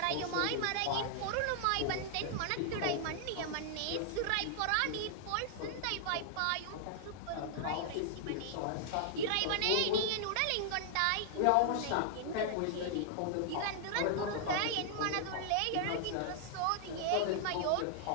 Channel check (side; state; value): both; different; correlation -0.01